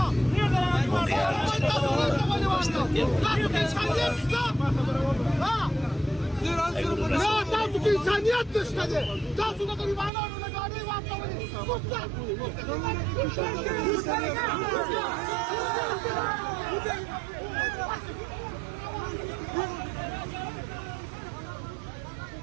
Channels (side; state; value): left; drops out; at 10.1 s